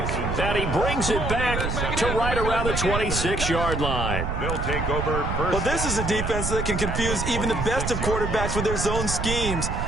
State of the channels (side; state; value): right; noise; rumble, 2 dB below the sound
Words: And he brings it back to right around the 26-yard line. They'll take over first. Well, this is a defense that can confuse even the best of quarterbacks with their zone schemes.